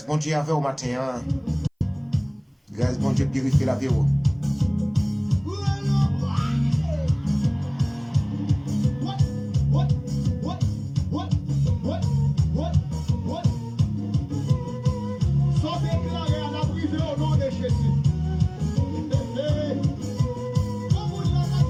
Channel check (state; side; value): identical; both; correlation 1.00